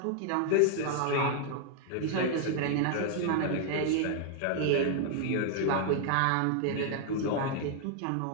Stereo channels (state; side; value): different; both; correlation 0.00